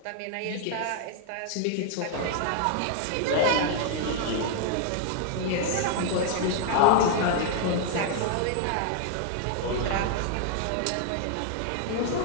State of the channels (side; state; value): both; different; correlation 0.00